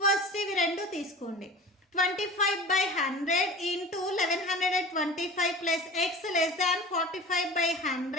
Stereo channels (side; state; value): both; normal; correlation 0.37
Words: ఫస్ట్ ఇవి రెండు తీసుకోండి. 25/100 into 1125 plus x less than